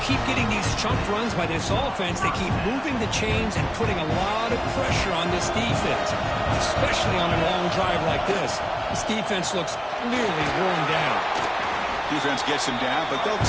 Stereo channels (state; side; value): identical; both; correlation 1.00